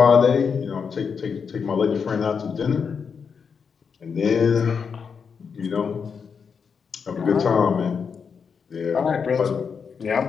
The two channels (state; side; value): quieter; right; 6.1 dB